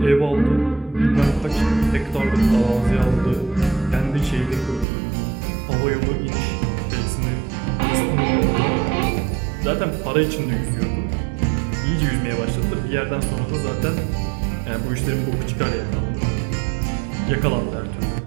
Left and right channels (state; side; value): drops out; left; at 4.9 s